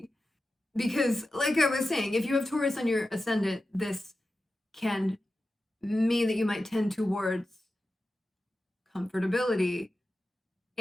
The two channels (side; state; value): both; normal; correlation 0.93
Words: Because like I was saying, if you have Taurus on your ascendant, this can mean that you might tend towards comfortability,